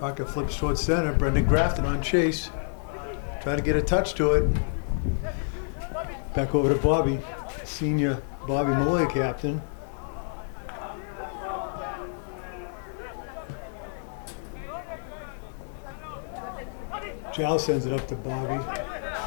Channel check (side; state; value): right; silent; 59 dB below the other